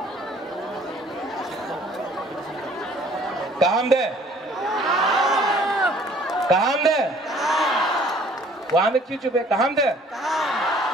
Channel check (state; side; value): normal; both; correlation 0.55